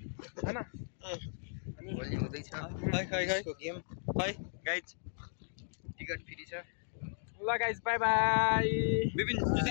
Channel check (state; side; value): silent; right; digital silence